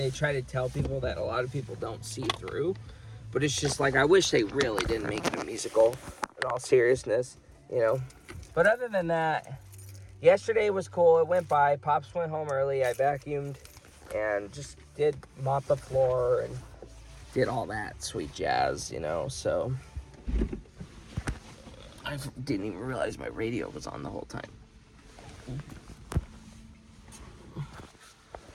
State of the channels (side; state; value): both; identical; correlation 1.00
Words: try to tell people that a lot of people don't see through. But it's just like, I wish they really didn't make it a musical, in all seriousness, you know. But other than that, yesterday was cool. It went by. Pops went home early. I vacuumed and just did mop the floor and did all that sweet jazz, you know. So I didn't even realize my radio was on the whole time.